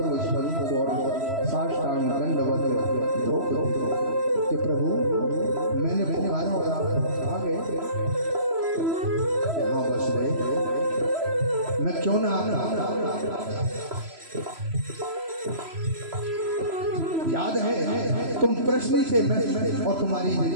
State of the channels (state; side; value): late; left; 3.0 ms